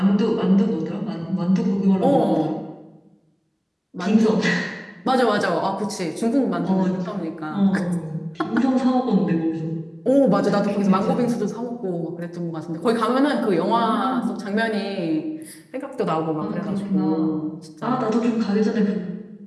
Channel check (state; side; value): identical; both; correlation 1.00